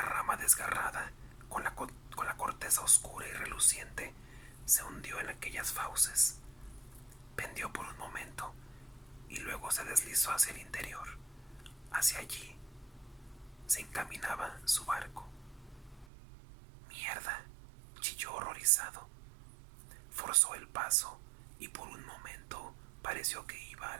rama desgarrada con la corteza oscura y reluciente se hundió en aquellas fauces. Pendió por un momento y luego se deslizó hacia el interior. Hacia allí se encaminaba su barco. ¡Mierda!, chilló horrorizado. Forzó el paso y por un momento pareció que iba a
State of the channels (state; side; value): drops out; left; at 16.1 s